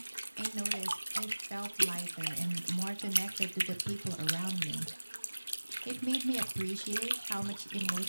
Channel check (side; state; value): both; inverted; correlation -1.00